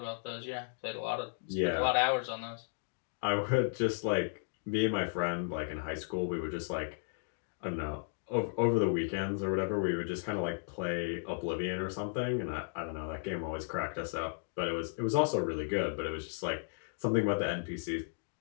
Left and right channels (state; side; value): silent; right; digital silence